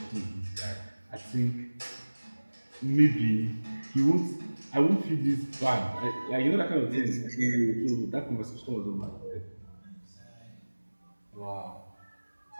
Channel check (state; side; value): inverted; both; correlation -1.00